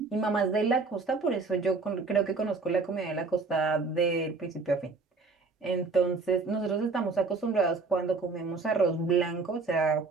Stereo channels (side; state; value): left; quieter; 4.1 dB